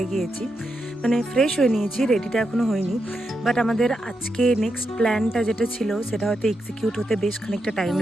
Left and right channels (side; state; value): both; normal; correlation 0.85